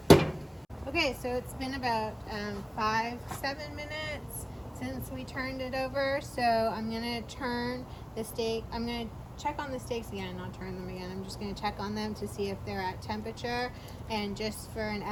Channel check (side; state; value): both; identical; correlation 1.00